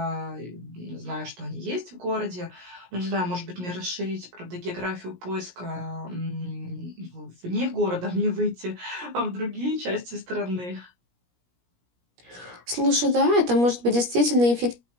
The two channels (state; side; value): late; left; 17 ms